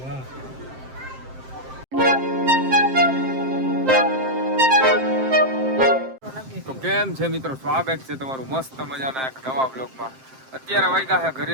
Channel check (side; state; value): left; late; 7.6 ms